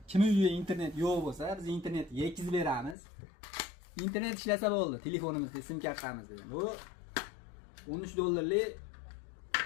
Kim uyida internet yo'q bo'lsa, biz internet yetkazib beramiz. Internet ishlasa bo'ldi, telefonimizda, sim kartamizda. Bu 13 dollarlik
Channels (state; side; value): drops out; right; at 3.0 s